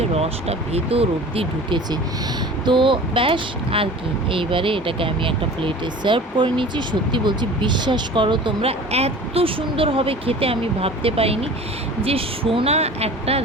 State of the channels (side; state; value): both; normal; correlation 0.41